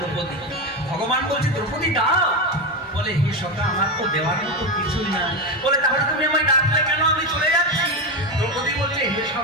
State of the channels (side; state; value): both; normal; correlation 0.14